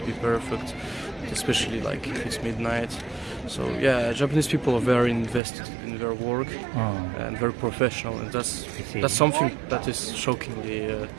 be perfect, especially like if it's midnight. So yeah, Japanese people are very invested in their work and very professional, and that's something that is shockingly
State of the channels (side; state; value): left; drops out; at 5.4 s